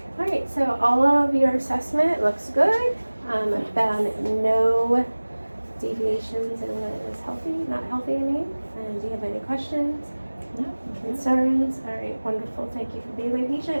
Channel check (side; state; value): both; inverted; correlation -1.00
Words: All right, so all of your assessment looks good. I found no deviations in what is healthy, not healthy, I mean. And do you have any questions, No. concerns? All right, wonderful. Thank you for being my